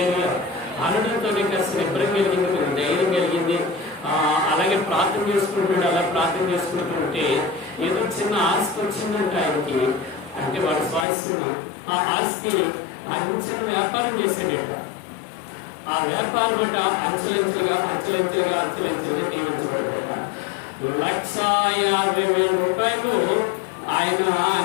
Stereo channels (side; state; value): right; drops out; at 11.1 s